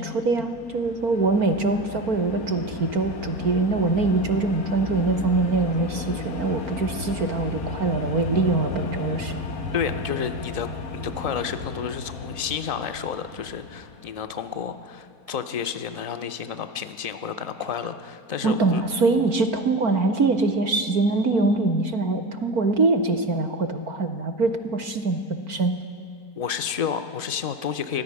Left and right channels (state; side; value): late; left; 4.4 ms